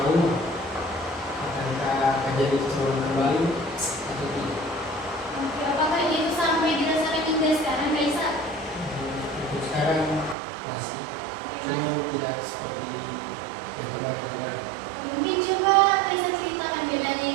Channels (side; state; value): left; drops out; at 10.4 s